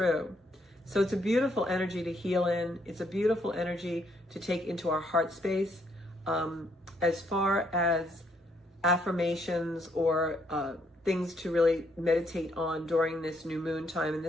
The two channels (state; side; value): normal; both; correlation 0.71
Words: So it's a beautiful energy to heal in. It's a beautiful energy to take into our heart space. As far as affirmations or things to really meditate on during this new moon time, and